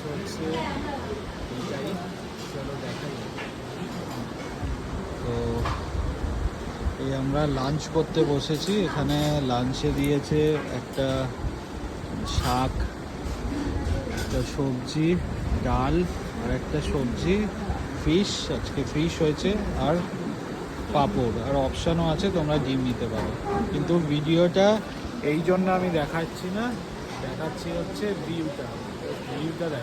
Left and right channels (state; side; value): identical; both; correlation 1.00